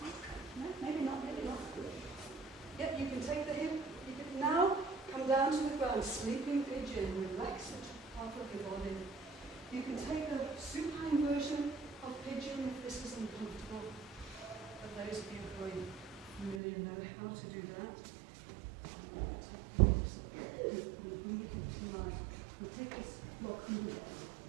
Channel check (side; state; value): left; drops out; at 16.6 s